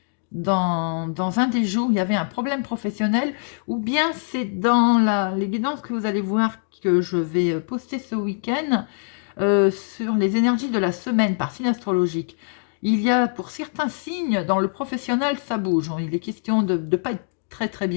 Dans un des jours, il y avait un problème professionnel, ou bien c'est dans les guidances que vous allez voir que je vais poster ce week-end sur les énergies de la semaine par signe astrologique. Il y a pour certains signes, dans le professionnel, ça bouge. Il est question de ne pas être très très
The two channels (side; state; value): right; silent; digital silence